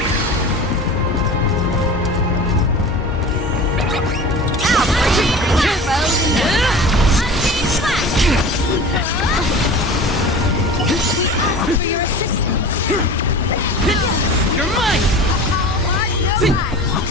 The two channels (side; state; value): both; normal; correlation 0.36